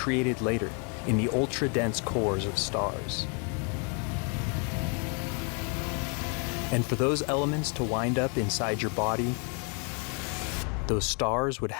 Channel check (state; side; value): quieter; right; 37.5 dB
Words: later in the ultra-dense cores of stars. And for those elements to wind up inside your body, those stars would